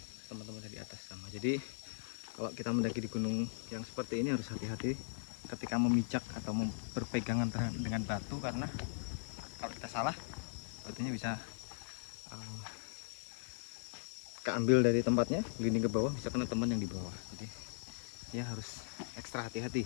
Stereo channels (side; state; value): right; silent; digital silence